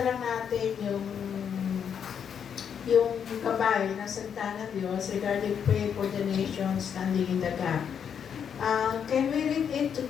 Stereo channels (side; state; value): right; quieter; 7.8 dB